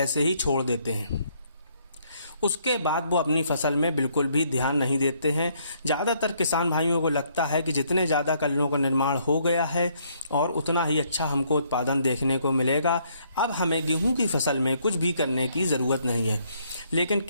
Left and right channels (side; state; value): both; inverted; correlation -0.68